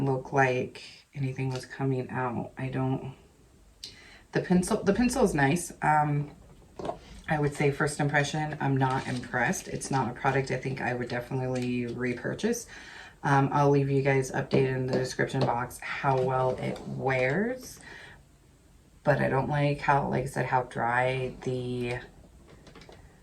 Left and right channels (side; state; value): both; identical; correlation 1.00